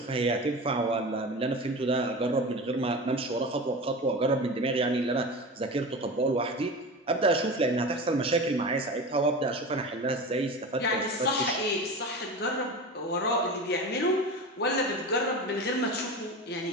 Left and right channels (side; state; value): both; normal; correlation 0.29